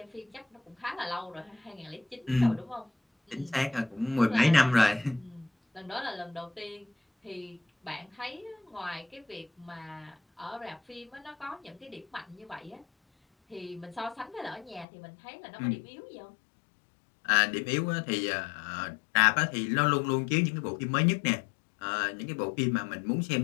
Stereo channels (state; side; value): drops out; right; at 14.9 s